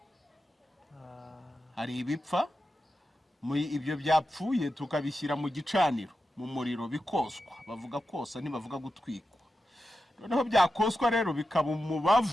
Hari ibipfa ibyo byapfuye tukabishyira mu gicaniro mu muriro bikoswa. Bavuga kosa ntibavuga gutwikwa. Noneho byakoswa rero bikaba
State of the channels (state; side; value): normal; both; correlation 0.90